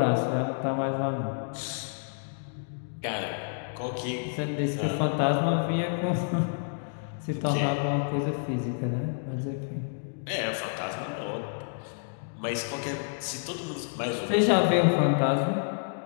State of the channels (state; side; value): silent; right; digital silence